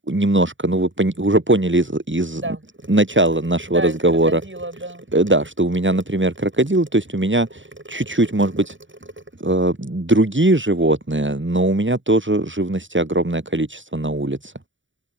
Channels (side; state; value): left; late; 0.55 ms